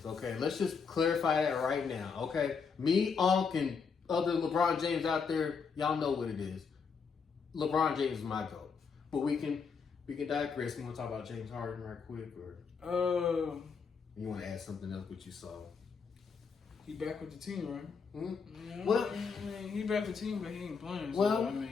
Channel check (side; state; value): right; quieter; 5.6 dB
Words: Okay, let's just clarify that right now. Okay, me, Unc, and other LeBron James out there, y'all know what it is. LeBron James is my GOAT. But we can digress. You want to talk about James Harden right quick, or you want to add something else what you saw? He back with the team, right? Mm-hmm. Yeah, Well, I mean, he back with the team, but he ain't playing. So, Well, I